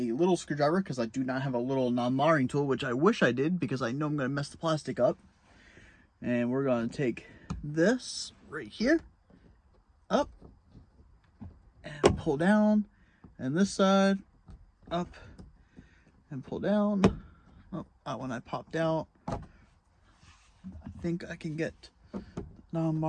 a little screwdriver because I do not have a little non-marring tool, which I wish I did because I know I'm going to mess the plastic up. And we're going to take this right here, up, and pull down, and this side, up, and pull down. Oh, that one I popped out. I think I can get the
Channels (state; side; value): identical; both; correlation 1.00